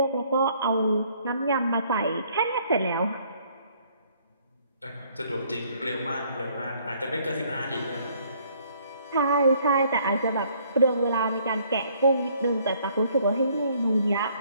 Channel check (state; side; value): inverted; both; correlation -0.63